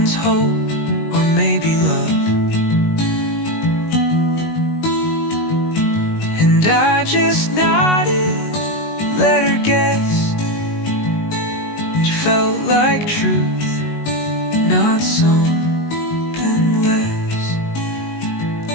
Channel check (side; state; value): right; late; 19 ms